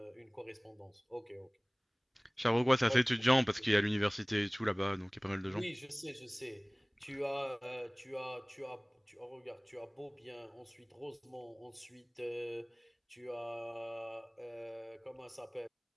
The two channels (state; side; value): identical; both; correlation 1.00